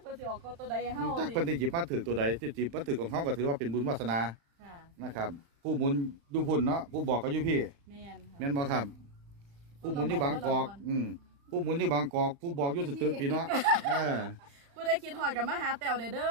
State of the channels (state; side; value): late; left; 35 ms